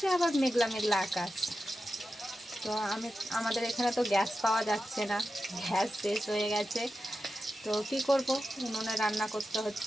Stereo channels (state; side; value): normal; both; correlation 0.91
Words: আবার মেঘলা মেঘলা আকাশ। তো আমাদের এখানে তো গ্যাস পাওয়া যাচ্ছে না, গ্যাস শেষ হয়ে গেছে। তো কি করব, উনুনে রান্না করতে